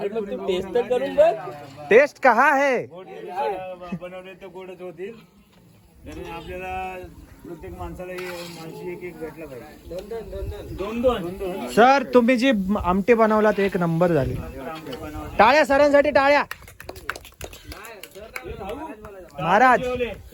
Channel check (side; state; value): both; identical; correlation 1.00